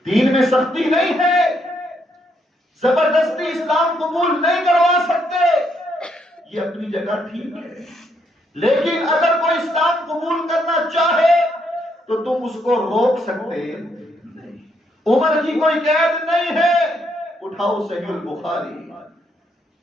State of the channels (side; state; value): both; normal; correlation 0.75